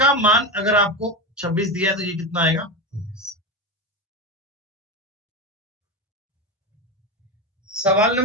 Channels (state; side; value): normal; both; correlation 0.18